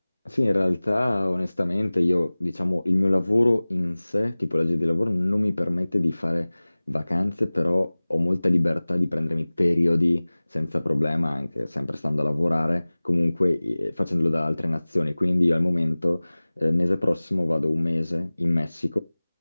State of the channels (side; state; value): both; inverted; correlation -0.99